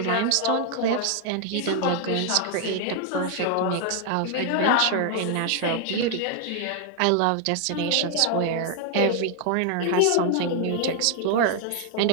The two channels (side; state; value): both; different; correlation 0.00